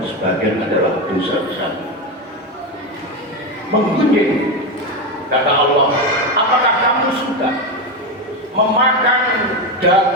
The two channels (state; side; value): normal; both; correlation 0.13